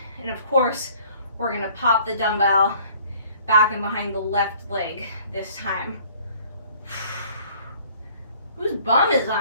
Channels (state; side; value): inverted; both; correlation -0.55